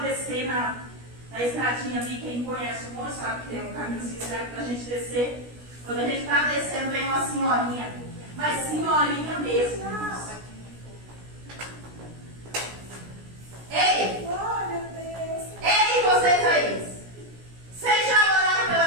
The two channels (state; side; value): late; left; 17 ms